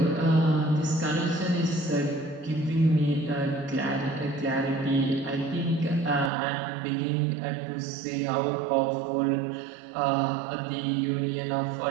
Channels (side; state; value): left; drops out; at 6.3 s